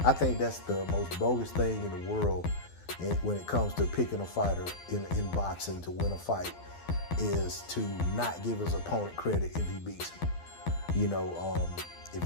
I think that's the most bogus thing in the world when it comes to picking a fighter in boxing to win a fight, is to not give his opponent credit if he beats him.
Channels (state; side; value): late; right; 12 ms